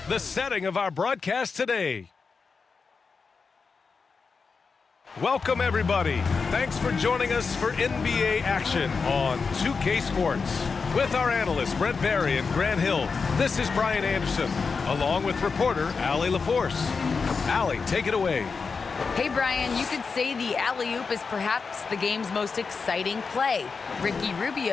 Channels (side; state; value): right; quieter; 5.0 dB